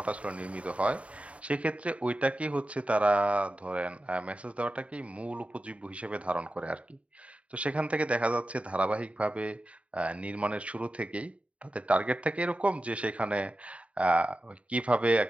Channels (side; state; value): left; late; 0.064 ms